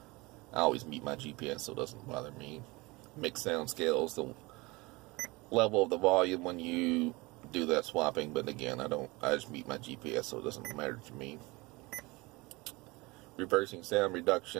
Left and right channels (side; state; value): left; quieter; 23.6 dB